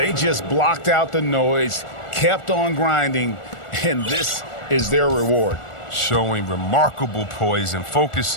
just blocked out the noise, kept on grinding, and this is their reward. Showing remarkable poise and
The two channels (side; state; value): right; late; 1.4 ms